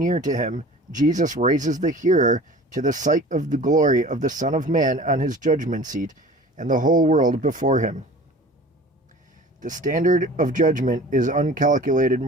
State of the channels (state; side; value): normal; both; correlation 0.42